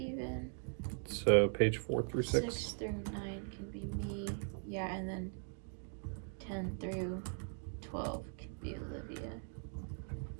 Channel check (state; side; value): silent; left; 51 dB below the other